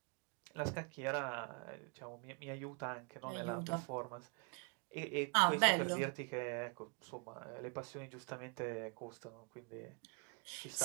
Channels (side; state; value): left; quieter; 35.0 dB